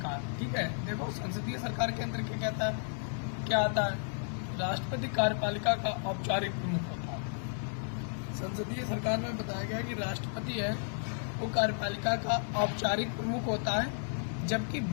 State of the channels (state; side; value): silent; right; digital silence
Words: ठीक है, देखो संसदीय सरकार के अंदर क्या आता है? राष्ट्रपति कार्यपालिका का औपचारिक प्रमुख होता है। संसदीय सरकार में बताया गया कि राष्ट्रपति है वो कार्यपालिका का औपचारिक प्रमुख होता है, जबकि